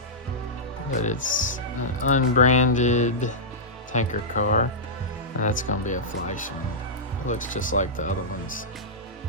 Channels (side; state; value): both; normal; correlation -0.12